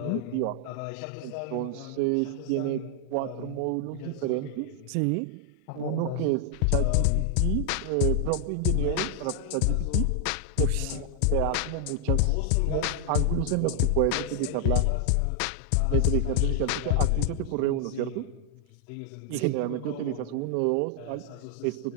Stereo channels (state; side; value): different; both; correlation 0.00